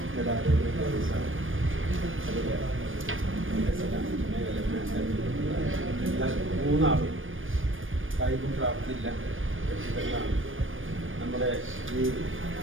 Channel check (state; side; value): late; left; 0.58 ms